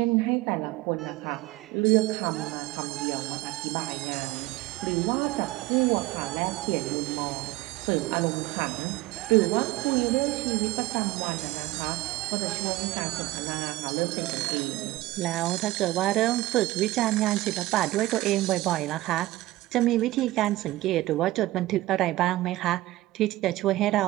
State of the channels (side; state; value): left; quieter; 17.8 dB